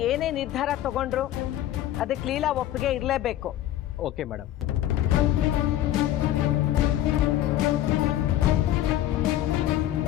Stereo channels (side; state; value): right; quieter; 13.0 dB